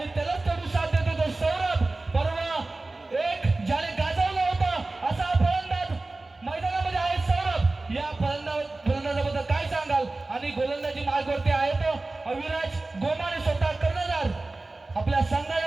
त्यालाच तेवढी साथ देतो तो सौरभ. परवा एक ज्याने गाजवलं होतं असा फलंदाज मैदानामध्ये आहे सौरभ. या फलंदाजाबद्दल काय सांगाल? आणि गोलंदाजी मार्गावरती आहे तो अविराज गोमाने, स्वतः कर्णधार. आपल्या संघाला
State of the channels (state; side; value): quieter; left; 3.2 dB